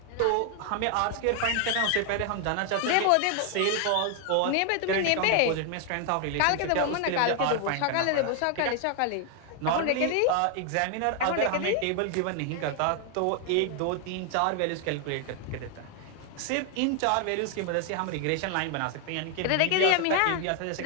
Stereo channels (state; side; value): different; both; correlation 0.00